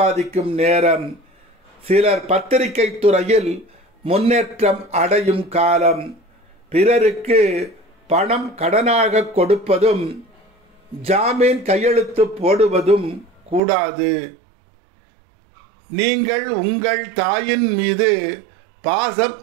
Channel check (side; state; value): left; drops out; at 13.6 s